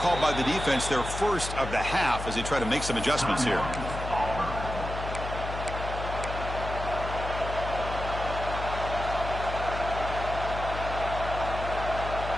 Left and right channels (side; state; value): left; noise; hum, 6 dB below the sound